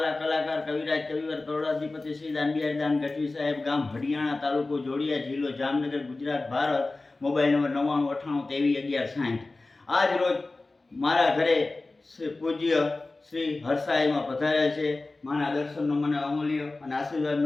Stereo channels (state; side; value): quieter; right; 3.2 dB